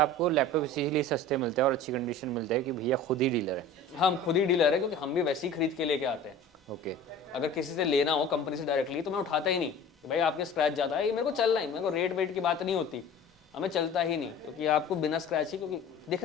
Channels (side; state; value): both; normal; correlation 0.41